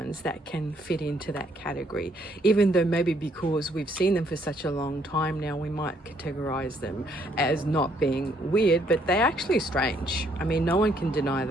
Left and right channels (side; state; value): both; normal; correlation 0.69